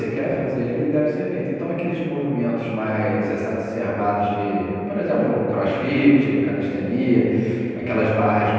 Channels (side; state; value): both; identical; correlation 1.00